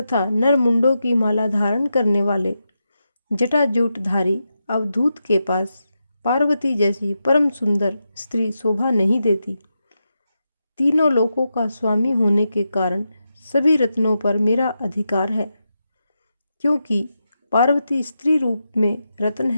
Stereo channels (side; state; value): both; inverted; correlation -0.87